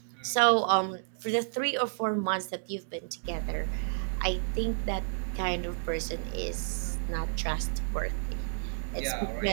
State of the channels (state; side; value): silent; left; digital silence